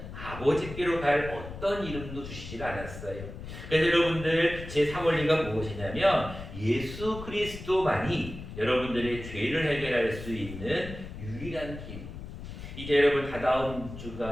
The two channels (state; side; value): noise; left; rumble, 11 dB below the sound